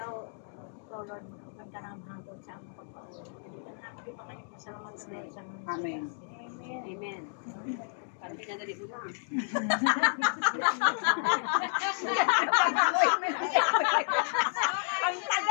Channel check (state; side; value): silent; right; digital silence